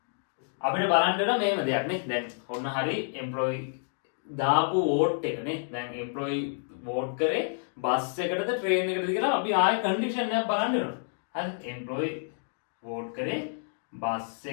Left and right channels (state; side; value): silent; right; digital silence